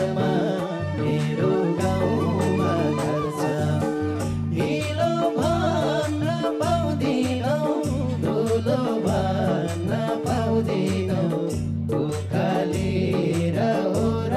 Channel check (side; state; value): both; identical; correlation 1.00